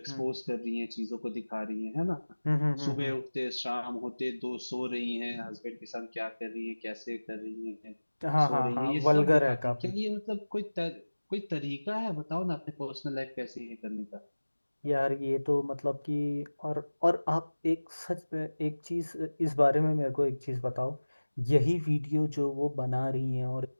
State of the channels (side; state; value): both; inverted; correlation -1.00